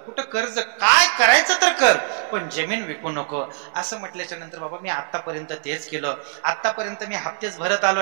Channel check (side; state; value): left; silent; 64 dB below the other